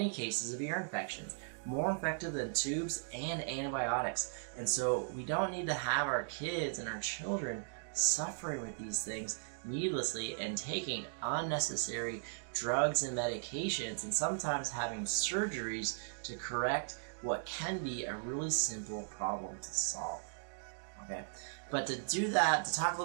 cases of ear infections, more effective than tubes and antibiotics. And so we don't need to have our kids and our children suffering with these things needlessly and taking unnecessary drugs and medications and sometimes having surgeries to correct what can be a really simple problem to solve. Okay, but to do that, to talk a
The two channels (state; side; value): silent; left; digital silence